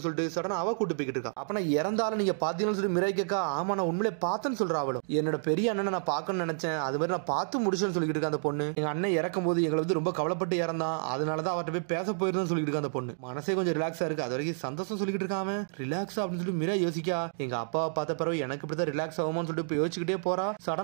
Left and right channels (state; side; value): silent; left; digital silence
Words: சொல்லிட்டு சடனா அவ கூட்டு போய்கிட்டு இருக்கா. அப்ப நான் இறந்தாலும் நீங்க பாத்தீங்கன்னு சொல்லி மிராய் கேட்கா. ஆமா நான் உண்மையிலே பார்த்தேன்னு சொல்றா அவளும். என்னோட பெரிய அண்ணனை நான் பார்க்கணும்னு நினைச்சேன், அது மாதிரி நான் பார்த்து முடிச்சேன்னு சொல்லிட்டு இருக்கா அந்த பொண்ணு. எங்க அண்ணன் இறக்கும் போது எங்களை வந்து ரொம்ப கவலைப்பட்டு இறந்தான், அதனாலதான் அவர்கிட்ட போய் பேச போயிருந்தேன்னு சொல்லிட்டு இருக்கா அந்த பொண்ணு. மனசே கொஞ்சம் ரிலாக்ஸா இருக்கு. அது வரைக்கும் சந்தோஷம் சொல்லிட்டு இருக்காம ரிலாக்ஸா அப்படின்னு சொல்லி மிராய் யோசிக்கா. எங்க அப்பாவை பார்த்த பிறகு எனக்கு இப்படிதான் ரிலாக்ஸ் ஆகுமான்னு சொல்லிட்டு யோசிச்சுக்கிட்டே போறா.